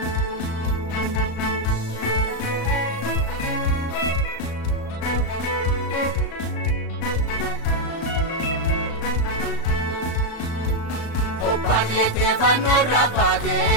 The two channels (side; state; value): right; late; 36 ms